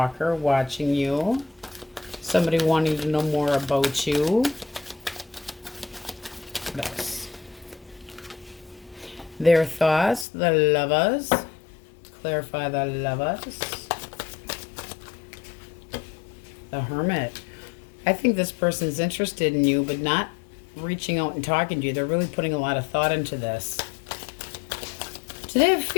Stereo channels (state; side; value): drops out; right; at 10.2 s